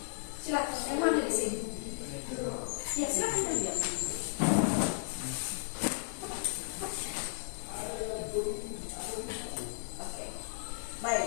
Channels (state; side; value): silent; right; digital silence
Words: Silakan, yang mana di sini? Ya, silakan lihat. Oke,